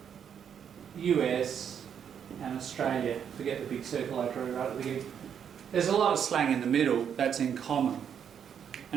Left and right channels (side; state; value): left; quieter; 8.1 dB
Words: US, and Australia. Forget the big circle I drew right at the beginning. There's a lot of slang in the middle that's in common,